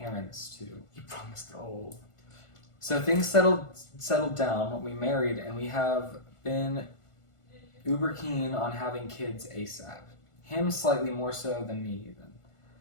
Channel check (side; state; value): right; late; 1.5 ms